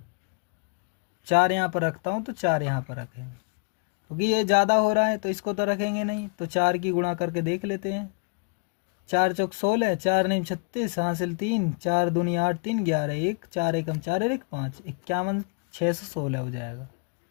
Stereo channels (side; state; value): right; quieter; 35.7 dB